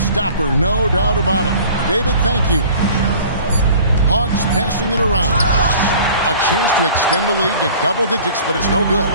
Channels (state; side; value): inverted; both; correlation -0.47